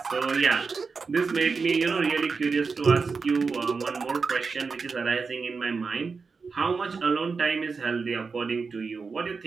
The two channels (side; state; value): left; quieter; 4.8 dB